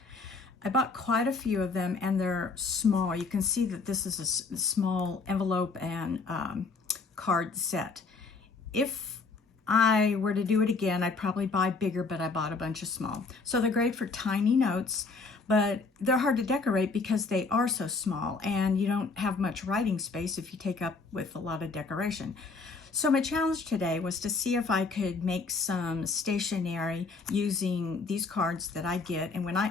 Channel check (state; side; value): quieter; right; 4.2 dB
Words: I bought quite a few of them and they're small. You can see that this is a small envelope and card set. If I were to do it again, I'd probably buy bigger, but I bought a bunch of small. So they're great for tiny notes, but they're hard to decorate because they are so small and you don't have much writing space if you take up with a lot of decoration. So my challenge today was to see if I could make some stationery using these cards that I get. And when